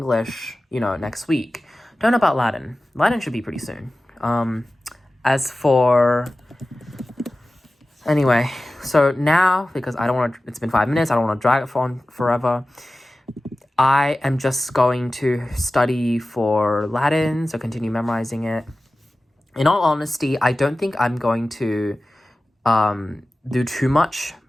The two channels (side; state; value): both; normal; correlation 0.96